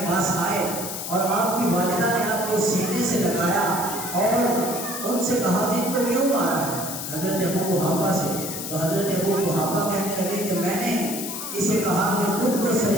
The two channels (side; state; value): left; noise; hiss, 6 dB below the sound